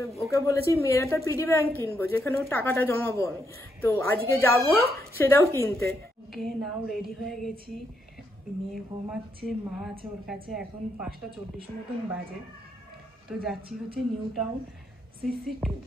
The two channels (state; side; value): normal; both; correlation 0.78